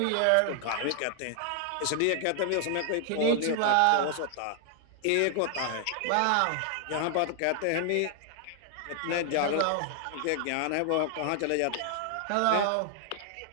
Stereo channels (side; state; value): both; different; correlation 0.00